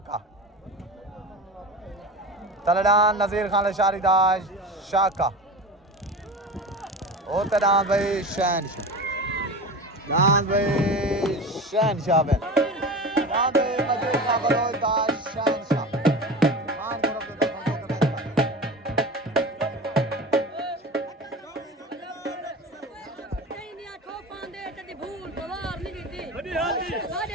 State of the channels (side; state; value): both; normal; correlation 0.30